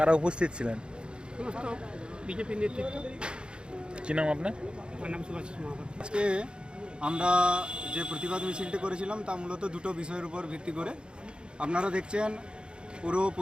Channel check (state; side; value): late; left; 0.053 ms